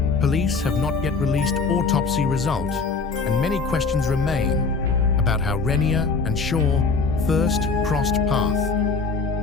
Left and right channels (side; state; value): right; quieter; 4.3 dB